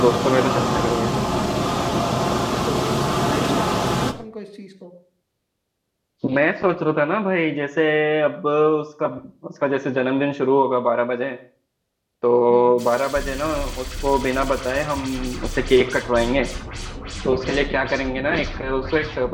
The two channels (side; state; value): both; identical; correlation 1.00